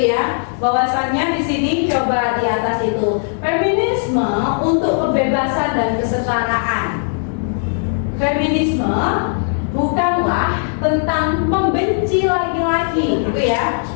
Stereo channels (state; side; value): silent; right; digital silence